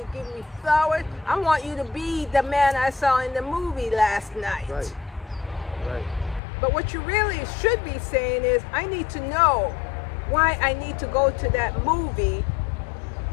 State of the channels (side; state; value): right; drops out; at 6.4 s